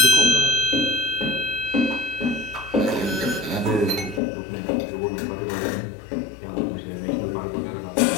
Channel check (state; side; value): drops out; right; at 4.2 s